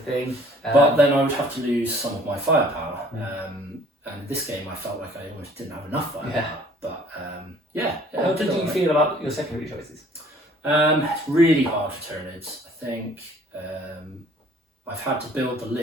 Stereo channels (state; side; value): normal; both; correlation 0.55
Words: But then I would have to lose some of my firepower. And in this game, I felt like I almost didn't have enough firepower. But how did you feel about your secondary choices? It's really hard for Tyranids. I think I've had to build the